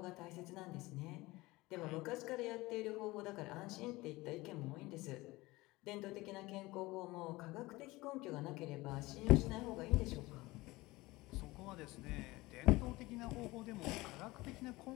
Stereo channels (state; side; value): quieter; right; 20.7 dB